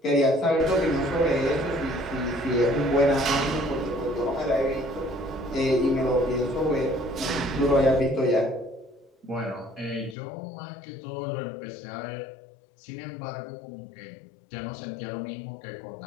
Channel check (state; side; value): drops out; right; at 10.2 s